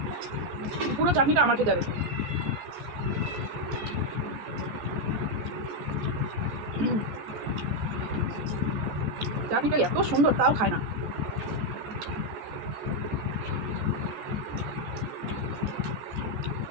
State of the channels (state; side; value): late; left; 14 ms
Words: পুরো চাটনিটা আমার খেতে হবে। চাটনিটা এত সুন্দর তাও খায় না।